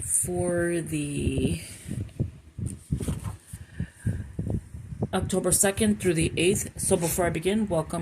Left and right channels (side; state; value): both; identical; correlation 1.00